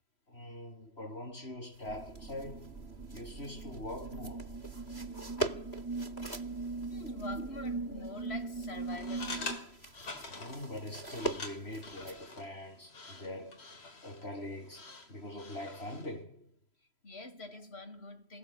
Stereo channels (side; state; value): right; late; 3.0 ms